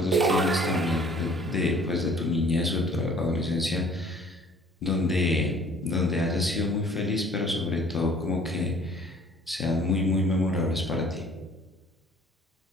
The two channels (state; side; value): normal; both; correlation 0.54